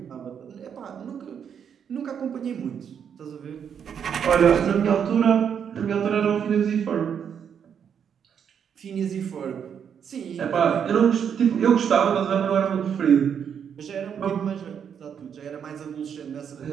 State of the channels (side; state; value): left; quieter; 7.8 dB